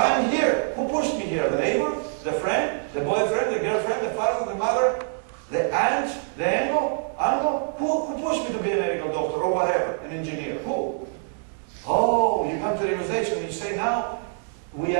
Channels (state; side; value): silent; left; digital silence